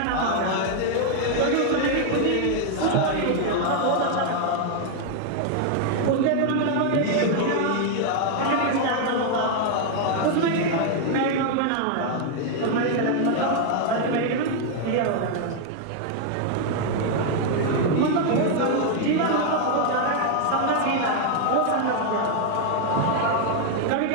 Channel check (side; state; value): both; different; correlation 0.00